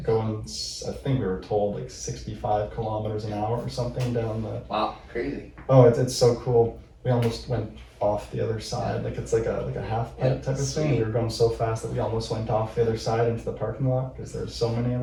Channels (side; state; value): both; identical; correlation 1.00